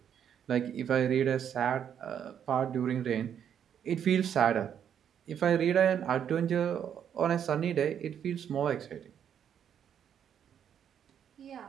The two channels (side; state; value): left; quieter; 8.8 dB